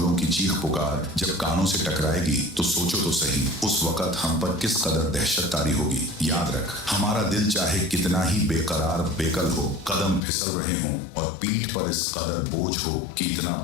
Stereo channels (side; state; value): right; drops out; at 10.2 s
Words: की चीख पुकार जब कानों से टकराएगी तो सोचो तो सही, उस वक्त हम पर किस कदर दहशत तारी होगी। याद रख, हमारा दिल चाहे कितना ही बेकरार बेकल हो, कदम फिसल रहे हों और पीठ पर इस कदर बोझ हो कि इतना